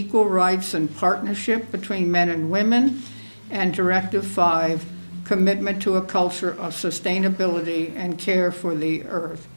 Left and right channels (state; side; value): inverted; both; correlation -1.00